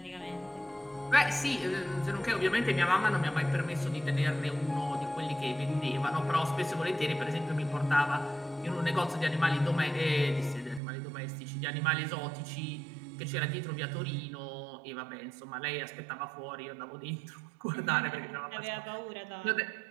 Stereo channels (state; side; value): drops out; left; at 10.8 s